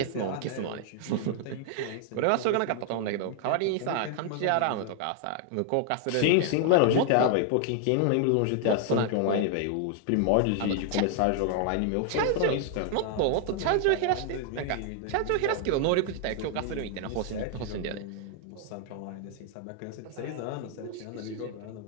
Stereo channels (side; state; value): both; different; correlation 0.00